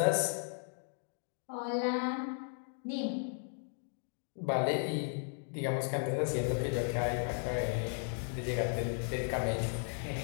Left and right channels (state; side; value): silent; right; 54 dB below the other